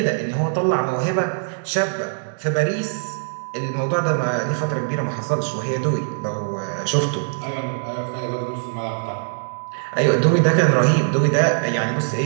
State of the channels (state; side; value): silent; left; digital silence